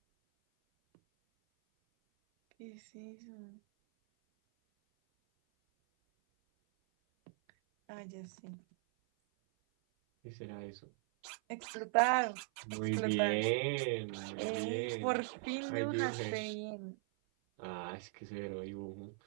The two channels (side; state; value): left; silent; 51 dB below the other